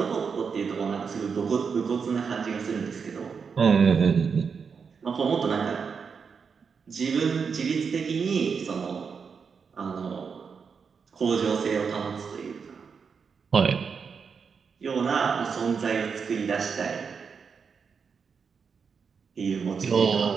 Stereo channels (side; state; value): left; quieter; 5.9 dB